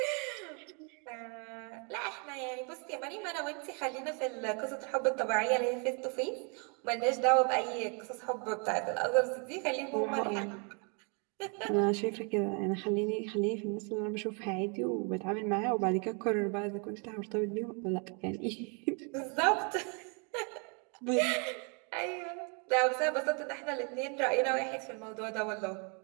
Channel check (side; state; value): left; quieter; 36.3 dB